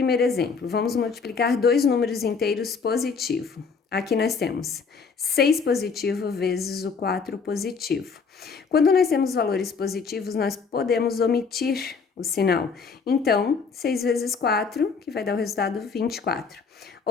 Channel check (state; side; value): quieter; right; 5.3 dB